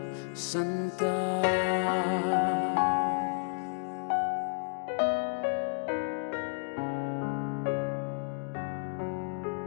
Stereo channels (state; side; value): silent; right; digital silence